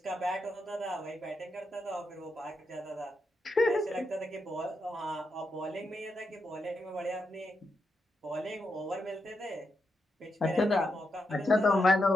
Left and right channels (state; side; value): normal; both; correlation 0.84